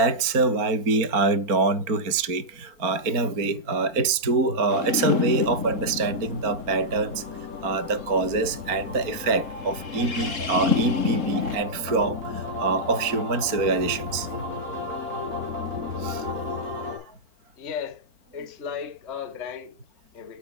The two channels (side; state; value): left; late; 4.3 ms